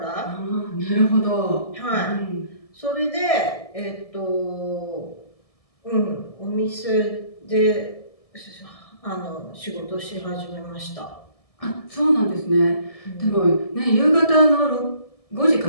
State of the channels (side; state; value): right; late; 1.7 ms